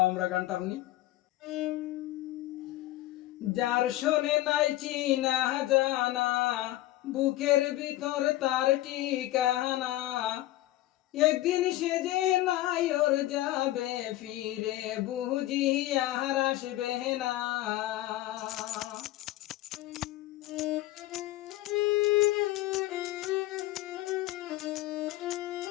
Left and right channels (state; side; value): quieter; right; 16.0 dB